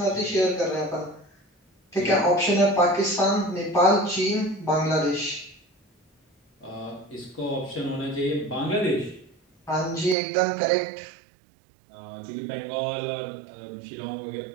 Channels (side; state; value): left; drops out; at 10.2 s